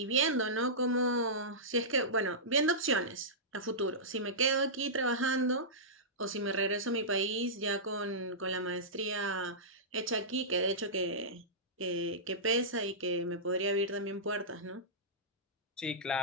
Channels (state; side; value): normal; both; correlation -0.16